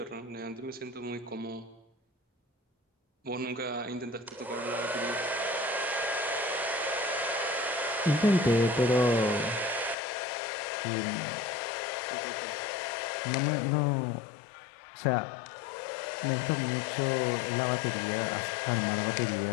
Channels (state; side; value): drops out; right; at 10.0 s